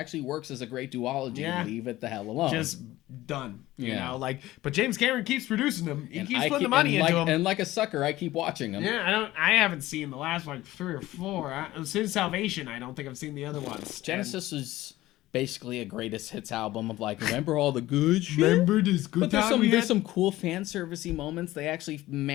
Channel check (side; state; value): right; quieter; 16.6 dB